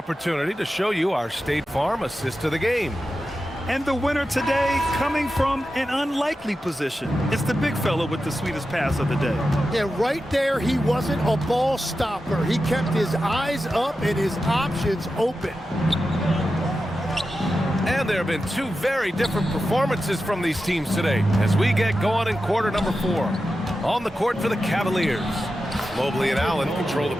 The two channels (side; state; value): both; normal; correlation 0.91